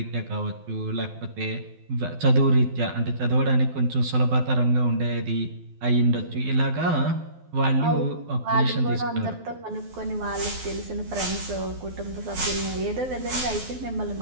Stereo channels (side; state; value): left; late; 12 ms